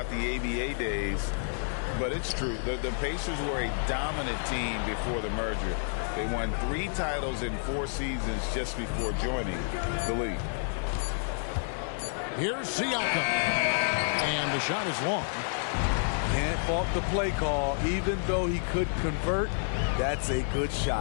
the ABA days, but it's true. The Pacers were a dominant team before the merger. They won 3 titles in 4 seasons just before joining the league. Here's Siakam. And the shot is long. Can't fault the play call. Even though he could convert, that's a good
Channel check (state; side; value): silent; right; digital silence